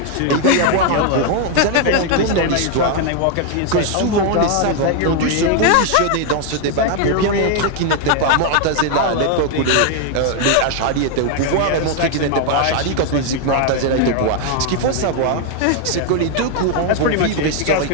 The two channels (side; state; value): both; different; correlation 0.00